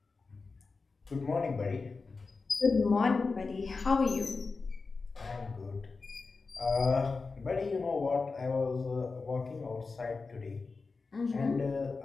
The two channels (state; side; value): quieter; right; 4.2 dB